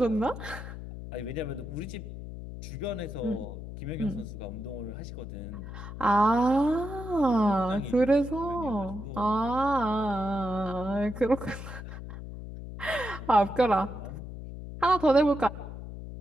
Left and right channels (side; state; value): left; noise; hum, 10 dB below the sound